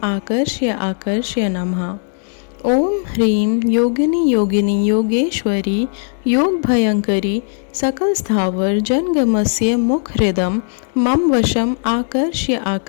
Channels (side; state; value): right; silent; digital silence